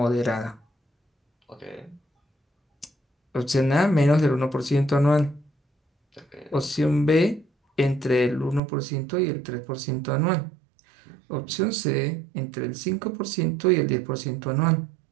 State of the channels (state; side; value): drops out; left; at 8.6 s